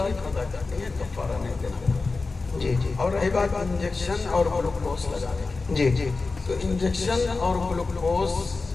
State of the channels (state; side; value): quieter; right; 3.8 dB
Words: قضا کرنی ہے، کفارہ نہیں دینا۔ اور رہی بات انجیکشن اور گلوکوز لگانے کی، تو انجیکشن اور گلوکوز